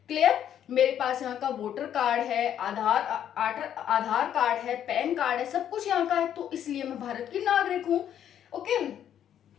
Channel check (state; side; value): quieter; right; 10.0 dB